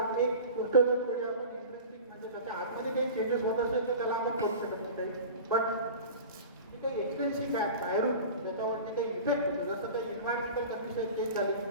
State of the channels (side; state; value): both; inverted; correlation -0.35